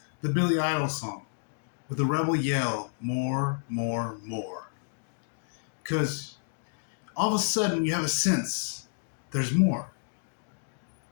Billy Idol song with the rebel yell, more, more, more. Because all of a sudden you have a sense there's more.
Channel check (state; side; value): silent; right; digital silence